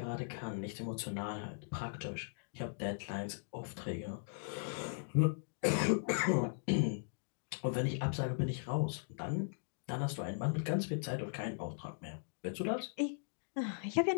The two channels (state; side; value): silent; right; digital silence